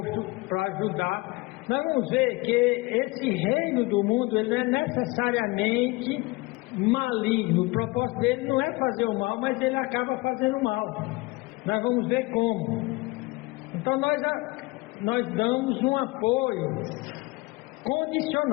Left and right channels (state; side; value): quieter; right; 23.3 dB